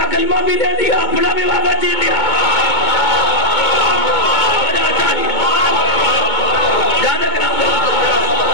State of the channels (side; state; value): right; late; 2.2 ms